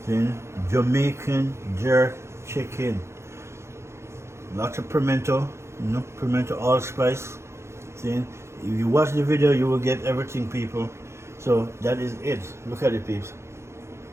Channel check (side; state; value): left; late; 0.13 ms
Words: See? Jamaican jerk chicken. Lots of pimento, pimento allspice. See? If you watch the video, you will get everything, people. So that is it. Look at it, peeps.